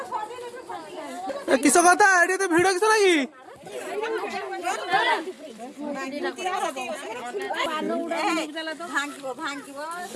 किस कथा ये तो भिड़ किस लगी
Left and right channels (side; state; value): both; identical; correlation 1.00